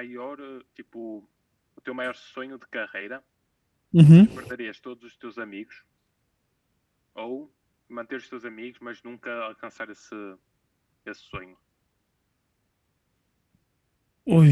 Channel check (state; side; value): identical; both; correlation 1.00